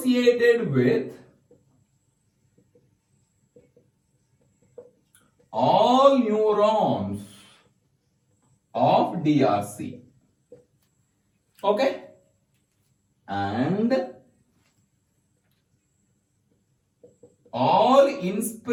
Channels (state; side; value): identical; both; correlation 1.00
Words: with all neurons of DRC. Okay? And all